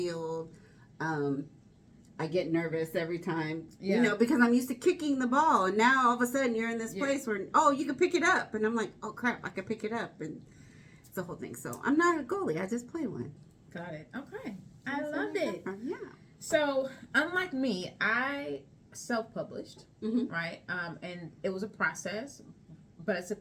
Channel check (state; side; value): identical; both; correlation 1.00